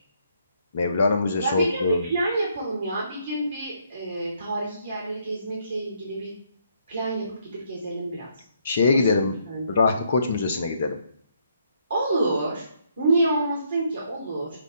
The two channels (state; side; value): inverted; both; correlation -0.71